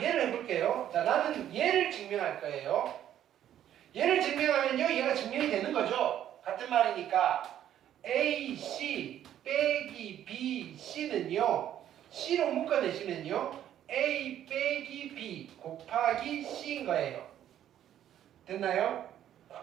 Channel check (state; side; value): quieter; left; 11.1 dB